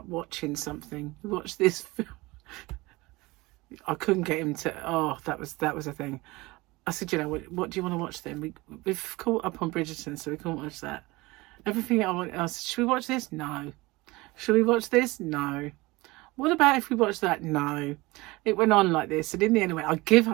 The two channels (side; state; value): left; quieter; 21.8 dB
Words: watching something. We watched this film. I couldn't get him to, oh, that was a thing. I said, you know, what do you want to watch then? We've caught up on Bridgerton, so we can't watch that. Everything I said, should we watch this? No. Should we watch this? No. What about if we watch that? No. It went on like this, and in the end, I give